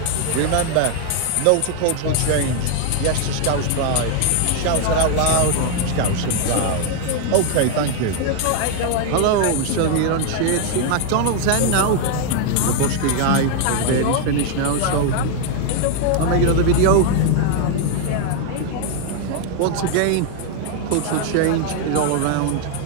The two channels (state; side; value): different; both; correlation 0.00